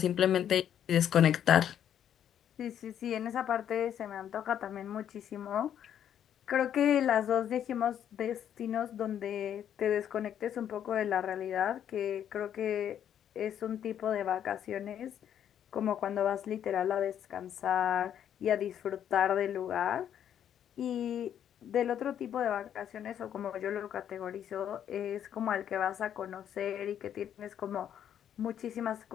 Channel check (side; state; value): right; quieter; 9.7 dB